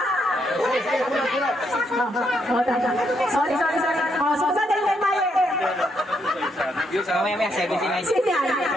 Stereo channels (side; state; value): both; normal; correlation 0.77